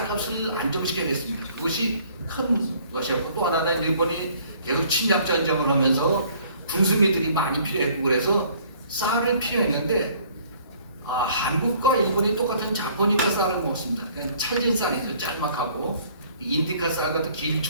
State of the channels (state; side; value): inverted; both; correlation -0.58